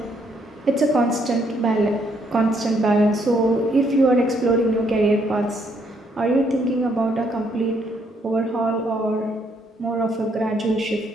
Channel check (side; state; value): both; normal; correlation 0.71